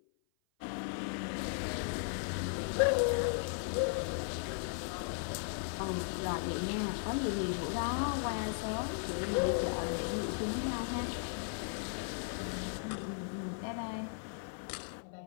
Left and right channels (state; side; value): silent; right; 53 dB below the other